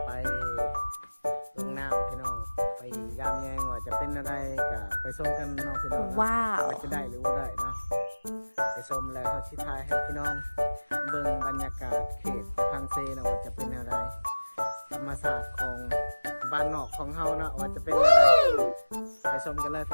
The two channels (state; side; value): inverted; both; correlation -1.00